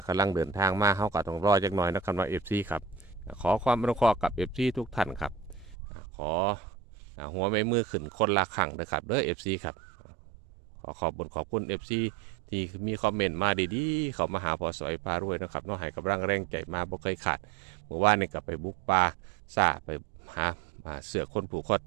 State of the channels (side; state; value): left; drops out; at 5.8 s